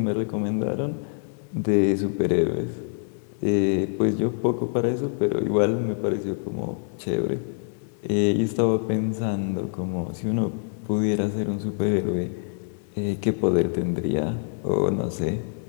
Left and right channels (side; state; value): right; silent; 57 dB below the other